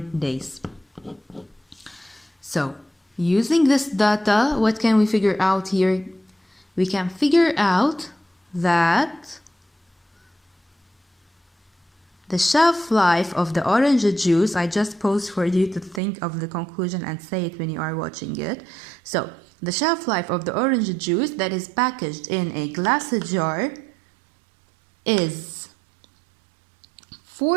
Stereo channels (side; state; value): left; drops out; at 16.0 s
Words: days. So, using this data, what can we figure out here? We can figure out that the shelf life of the orange juice, I just paused for you to think of the conclusion and say it when you are watching it. So, the shelf life of the orange juice that is packaged in a glass jar is